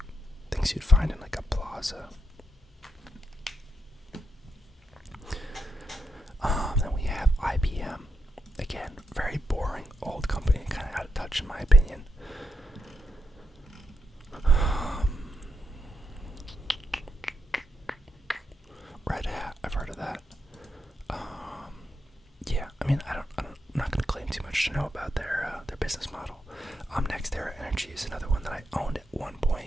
things you'd find in like a plaza. Then we have IBM. Again, very boring old company, kind of out of touch in my opinion. Red Hat, I've heard of that. Yeah, I mean, I'm not going to claim too much to know about their business model. NextEra Energy is another one that I owned at one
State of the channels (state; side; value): normal; both; correlation 0.83